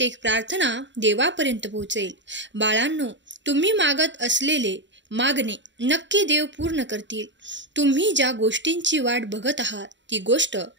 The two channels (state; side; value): late; left; 0.53 ms